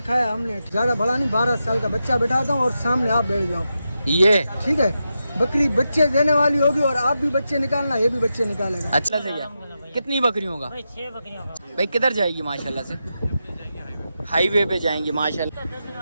हमने, ज्यादा बड़ा नहीं, 12 साल का बच्चा बैठाता हूँ और सामने आप बैठ जाओ, ये ठीक है। बकरी बच्चे देने वाली होगी और आप भी बच्चे निकालना, ये भी बच्चे निकालेगा। अच्छा सही है। कितनी बकरियों का? 6 बकरियों का। भाई किधर जाएगी माशाल्लाह से? हाईवे पे जाएंगी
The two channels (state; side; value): inverted; both; correlation -0.88